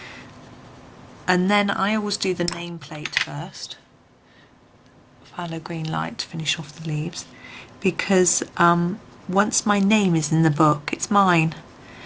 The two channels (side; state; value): both; identical; correlation 1.00